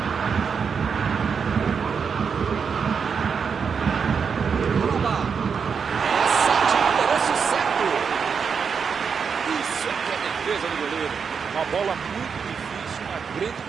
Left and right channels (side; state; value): left; quieter; 6.2 dB